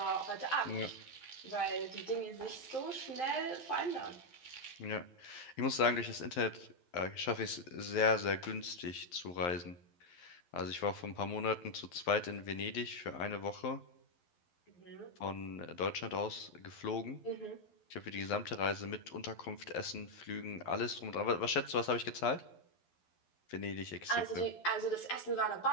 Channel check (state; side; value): late; right; 11 ms